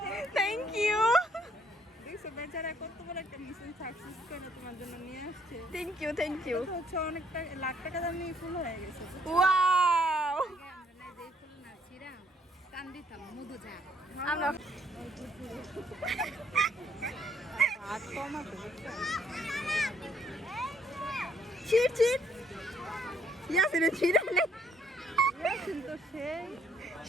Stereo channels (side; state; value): both; normal; correlation 0.67